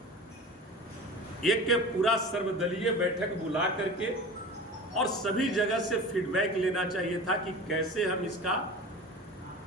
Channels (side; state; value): both; normal; correlation 0.35